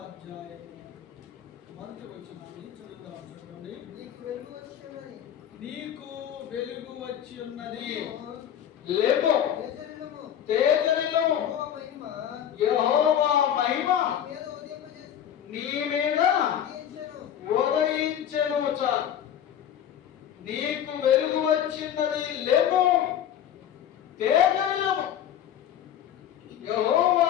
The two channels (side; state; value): right; quieter; 10.1 dB